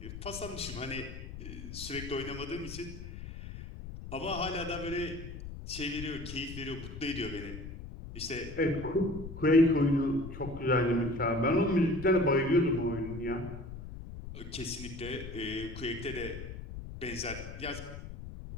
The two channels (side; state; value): left; noise; rumble, 10 dB below the sound